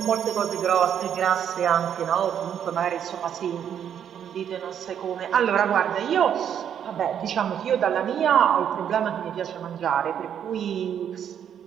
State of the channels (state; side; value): quieter; left; 9.0 dB